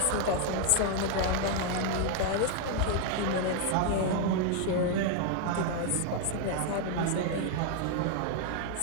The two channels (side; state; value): both; different; correlation 0.00